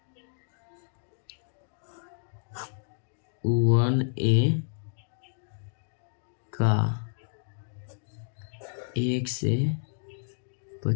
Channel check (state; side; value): silent; right; digital silence